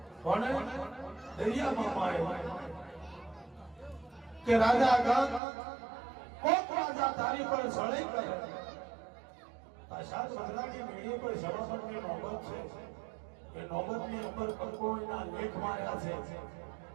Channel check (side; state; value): left; drops out; at 5.4 s